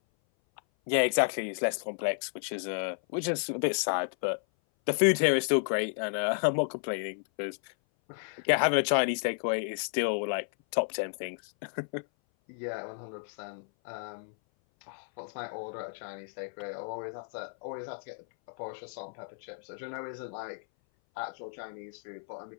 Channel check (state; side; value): silent; right; 56 dB below the other